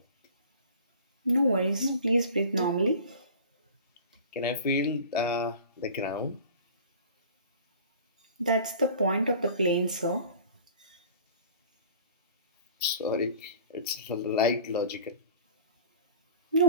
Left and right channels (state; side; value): inverted; both; correlation -0.44